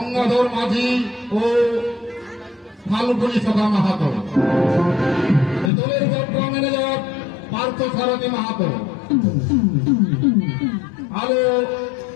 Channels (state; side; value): drops out; right; at 5.7 s